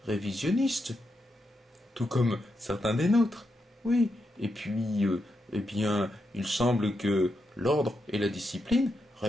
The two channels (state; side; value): normal; both; correlation 0.84